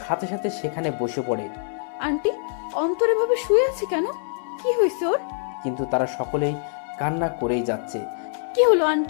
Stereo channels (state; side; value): silent; right; 62 dB below the other